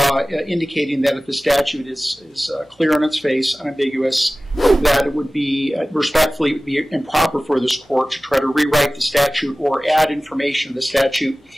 indicating that if the statute is clear on its face, unambiguous, that it would be, respectfully, would be improper for this court to try to rewrite the statute or add information to the statute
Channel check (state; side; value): normal; both; correlation 0.97